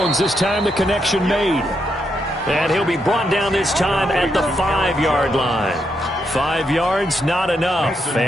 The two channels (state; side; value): normal; both; correlation 0.80